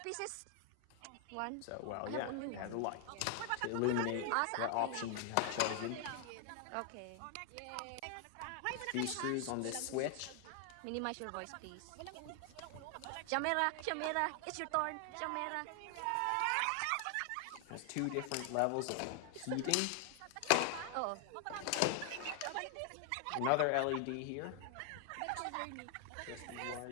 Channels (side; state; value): both; different; correlation 0.00